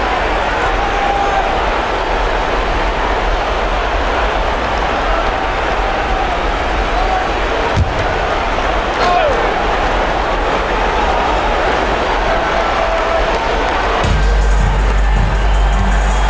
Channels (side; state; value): both; identical; correlation 1.00